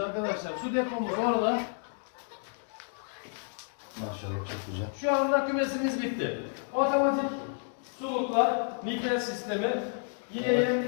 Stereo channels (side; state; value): right; silent; 57 dB below the other